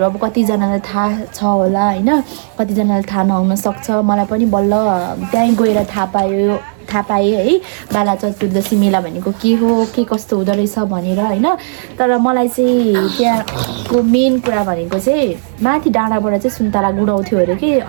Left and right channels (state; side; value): silent; left; digital silence